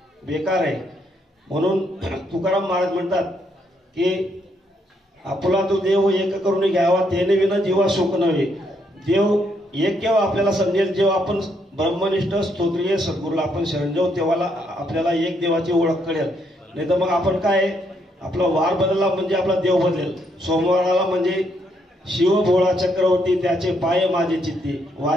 बेकार आहे। म्हणून तुकाराम महाराज म्हणतात की आपुला तो देव एक करून घ्यावा, तेने विना जीवा शोक नव्हे। देव एक केव्हा आपल्याला समजेल, जेव्हा आपण ब्रह्मनिष्ठ स्तोत्रीय सद्गुरूला आपण शरण जाऊ, तेव्हा आपल्याला एक देवाची ओळख कळेल। नाही तर मग आपण काय, आपला वार बदलला म्हणजे आपला देव बदलेल। सोमवाराला म्हणजे शिव भोळा चक्रवर्ती, त्याचे पाय माझे चित्ते,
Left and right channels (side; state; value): both; normal; correlation 0.74